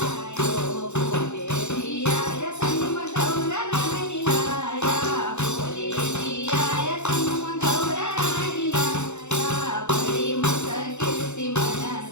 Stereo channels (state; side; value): late; right; 0.82 ms